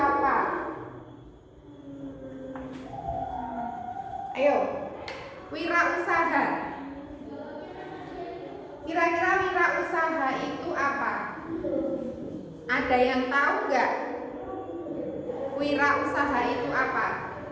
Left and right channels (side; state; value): both; identical; correlation 1.00